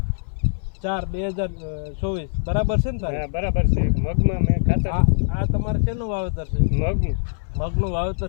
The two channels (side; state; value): right; silent; 59 dB below the other